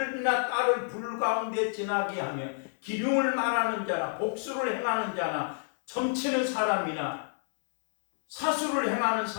딸을 불 가운데 지나게 하며 기륭을 말하는 자나 복수를 행하는 자나 점치는 사람이나 사수를 행하는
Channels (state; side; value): silent; right; 58 dB below the other